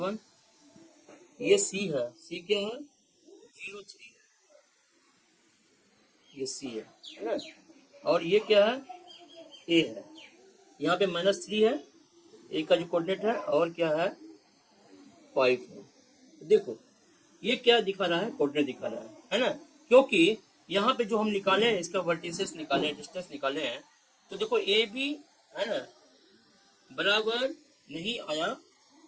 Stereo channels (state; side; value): identical; both; correlation 1.00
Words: ये सी है, सी क्या है 0/3, ये सी है ना। और ये क्या है ए है, यहाँ पे -3 है, ए का जो कोऑर्डिनेट है, और क्या है 5 है। देखो ये क्या दिखा रहा है, कोऑर्डिनेट दिखा रहा है ना। क्योंकि यहाँ पे जो हम निकाले हैं, इसका वर्टिसेस निकाले, डिस्टेंस निकाले हैं, तो देखो ए बी है ना बराबर नहीं आया